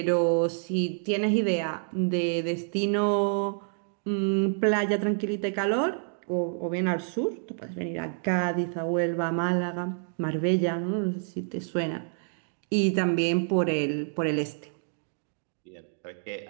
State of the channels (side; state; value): left; silent; 59 dB below the other